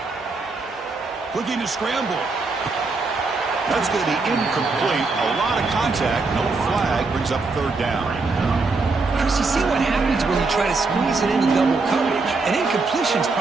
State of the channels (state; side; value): quieter; left; 3.9 dB